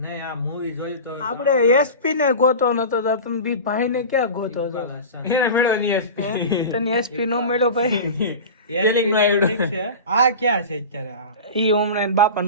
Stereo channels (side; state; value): both; inverted; correlation -0.31